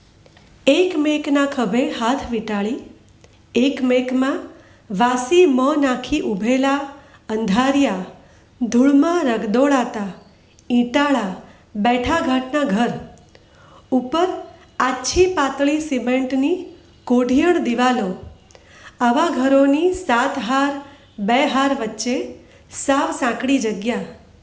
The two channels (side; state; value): both; identical; correlation 1.00